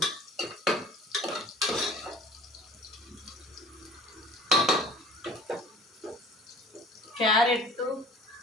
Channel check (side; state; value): both; normal; correlation 0.45